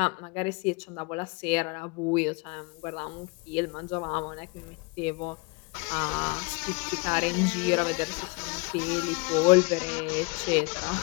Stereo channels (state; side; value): quieter; right; 28.7 dB